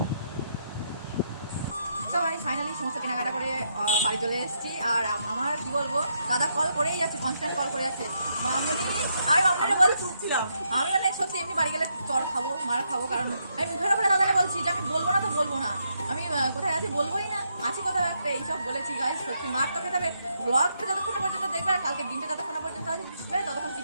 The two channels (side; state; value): both; inverted; correlation -0.78